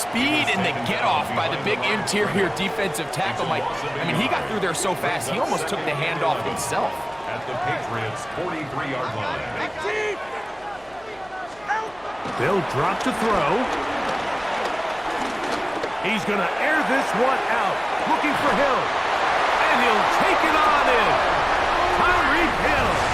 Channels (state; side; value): noise; right; hum, 27 dB below the sound